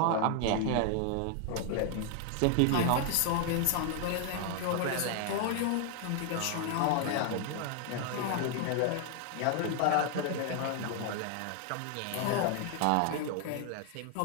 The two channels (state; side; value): different; both; correlation 0.00